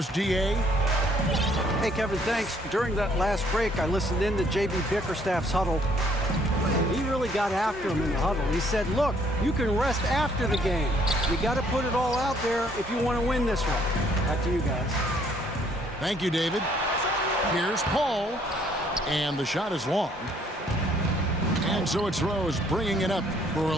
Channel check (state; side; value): normal; both; correlation 0.64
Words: DA? Hey, Kevin, thanks. During that last break, I listened in to J.B. Bickerstaff's huddle. He really got after him in the huddle. He said, look, you can rest after the game. You got to put it all out there if you want to win this one. Back to you guys. Thank you, David. Here's Paul. And the shot is long. And so it's Rose bringing it up for